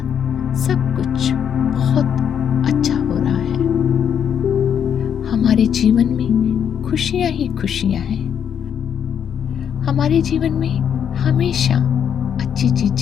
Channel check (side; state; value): right; quieter; 8.3 dB